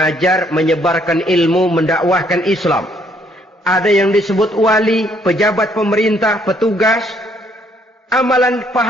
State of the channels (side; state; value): both; normal; correlation 0.67